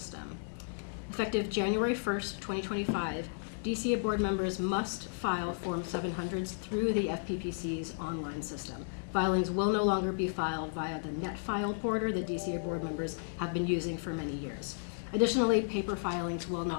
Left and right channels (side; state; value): right; silent; digital silence